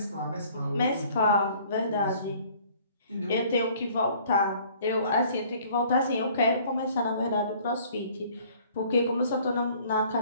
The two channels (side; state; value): both; inverted; correlation -0.55